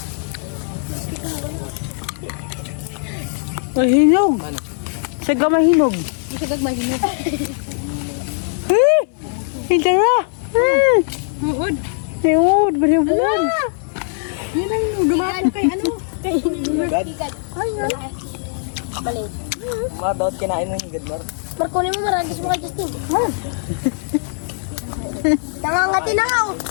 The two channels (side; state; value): right; silent; digital silence